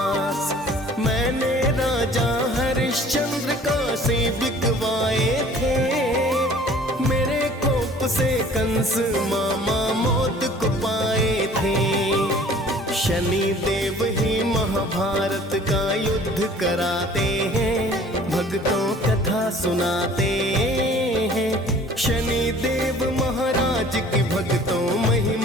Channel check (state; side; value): normal; both; correlation 0.50